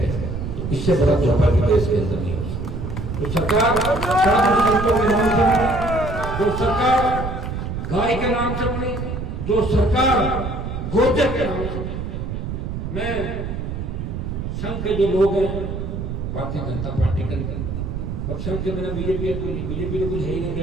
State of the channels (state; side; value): noise; right; rumble, 5 dB below the sound